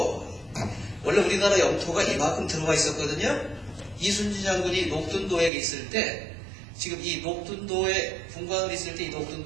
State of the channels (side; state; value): left; drops out; at 5.5 s